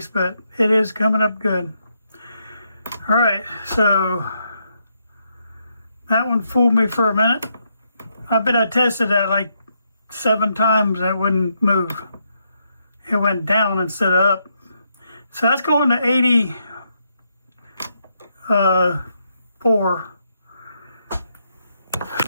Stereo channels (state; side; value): inverted; both; correlation -0.78